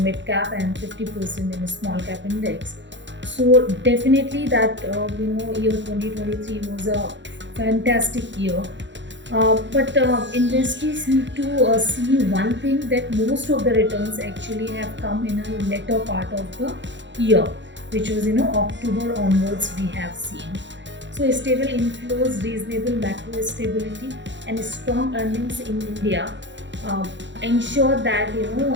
mid cap and 50% in a small cap index. So definitely that year 2023 was a fantastic year. But investors need to see one thing, that most of the returns actually have come in a later part of the year, which was October onwards we have seen. So stable inflows, reasonable macro stability, and strong earnings in India ensure that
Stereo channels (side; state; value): left; late; 0.53 ms